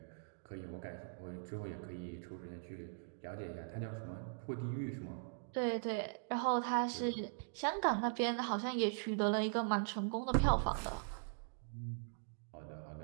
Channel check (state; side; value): silent; left; digital silence